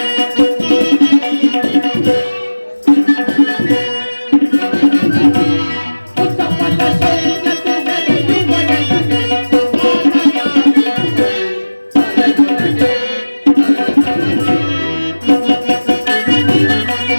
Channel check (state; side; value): inverted; both; correlation -1.00